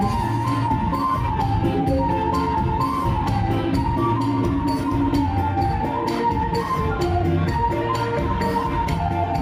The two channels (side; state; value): both; identical; correlation 1.00